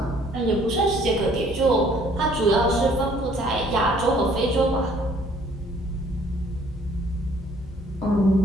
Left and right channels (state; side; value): normal; both; correlation 0.59